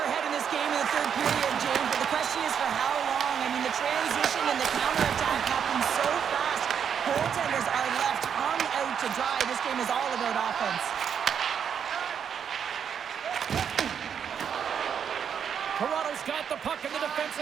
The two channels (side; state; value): left; quieter; 7.7 dB